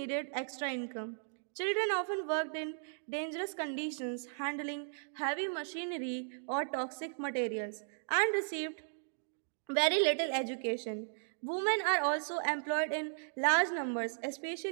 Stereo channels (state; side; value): silent; left; digital silence